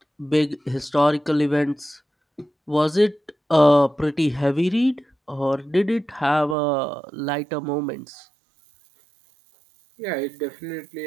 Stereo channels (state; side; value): drops out; left; at 6.6 s